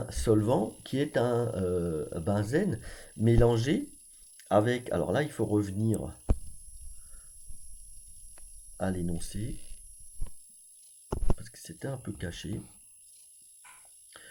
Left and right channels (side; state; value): both; identical; correlation 1.00